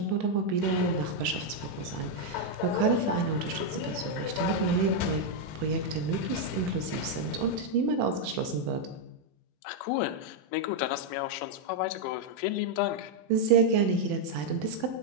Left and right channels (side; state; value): both; normal; correlation 0.00